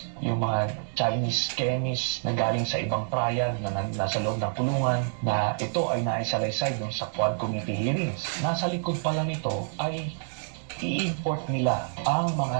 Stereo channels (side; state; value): left; silent; digital silence